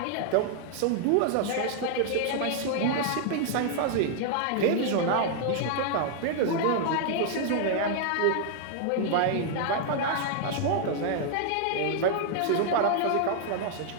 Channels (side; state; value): both; different; correlation 0.00